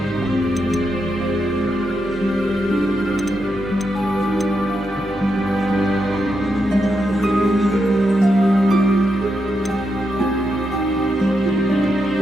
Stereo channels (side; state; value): both; normal; correlation 0.83